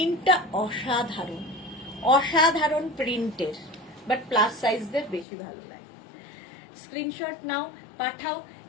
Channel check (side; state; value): right; drops out; at 5.2 s